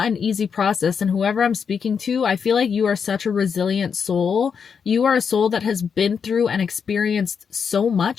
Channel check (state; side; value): quieter; right; 6.5 dB